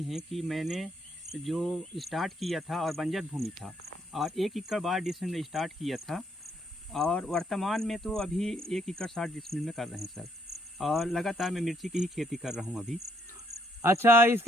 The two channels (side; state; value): both; normal; correlation 0.70